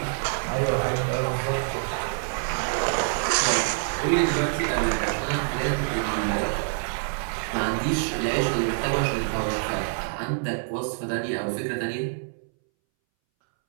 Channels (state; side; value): silent; left; 61 dB below the other